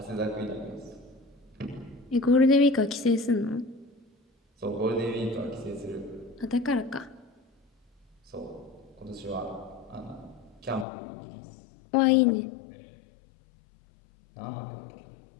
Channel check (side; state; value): right; drops out; at 10.9 s